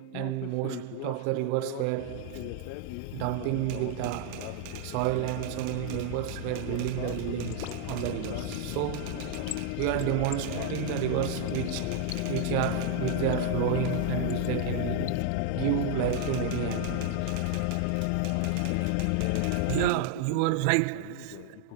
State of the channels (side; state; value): both; different; correlation 0.00